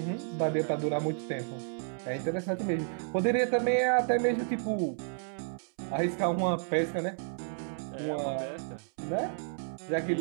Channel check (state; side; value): silent; left; 57 dB below the other